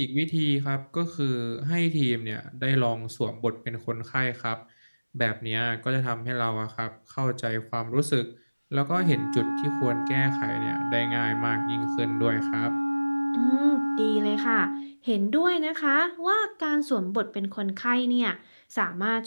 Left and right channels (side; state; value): both; inverted; correlation -1.00